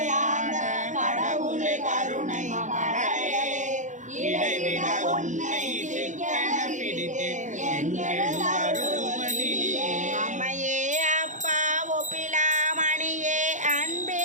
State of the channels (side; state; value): left; late; 0.36 ms